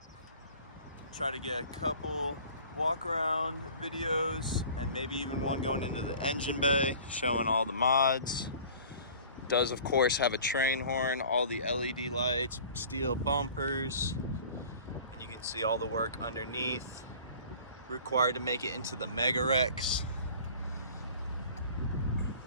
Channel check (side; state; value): both; inverted; correlation -0.46